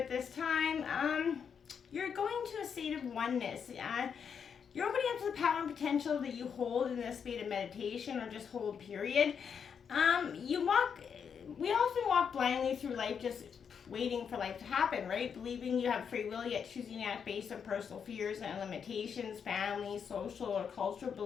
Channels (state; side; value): quieter; right; 7.0 dB